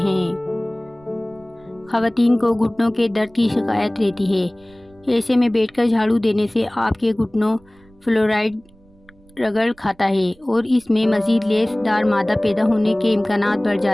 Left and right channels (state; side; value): noise; right; rumble, 29 dB below the sound